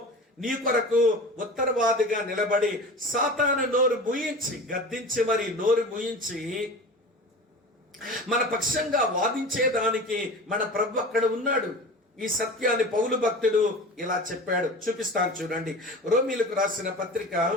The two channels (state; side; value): normal; both; correlation 0.34